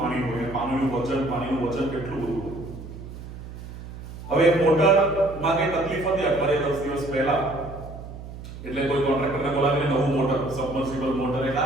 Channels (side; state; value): right; noise; hum, 12 dB below the sound